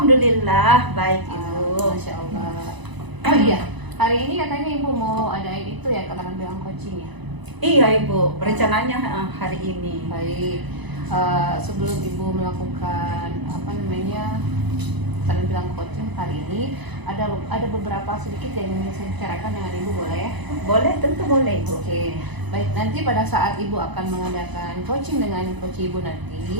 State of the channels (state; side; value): late; left; 1.0 ms